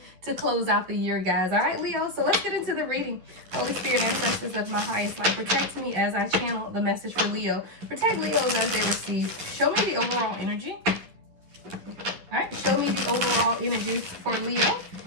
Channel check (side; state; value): left; late; 11 ms